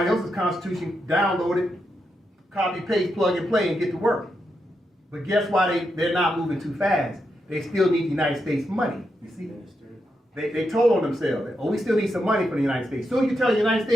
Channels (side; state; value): both; normal; correlation 0.84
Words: else's constitution, download it, copy, paste, plug and play, and get to work. But guess why they're not moving too fast? They still need the United States money. You see? They told on themselves that, oh, we still need some money from the United States. Soon as you tell the United